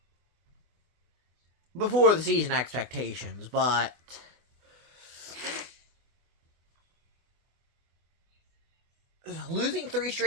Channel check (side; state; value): left; late; 24 ms